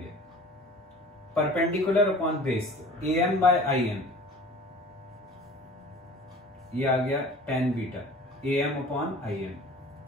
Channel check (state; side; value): normal; both; correlation 0.44